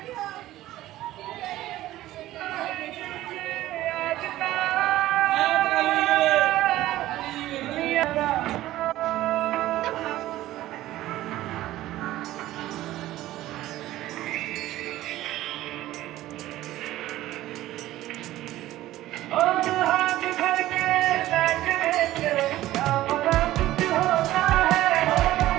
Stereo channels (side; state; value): left; quieter; 15.2 dB